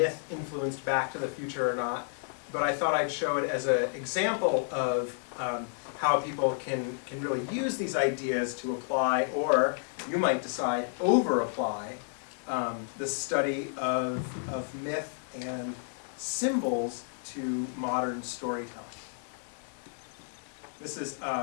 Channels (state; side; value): silent; right; digital silence